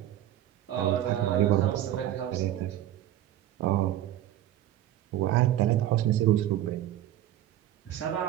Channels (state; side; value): quieter; left; 12.7 dB